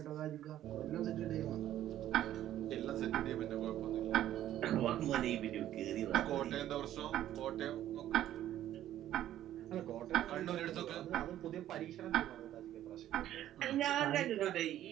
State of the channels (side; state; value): left; quieter; 12.4 dB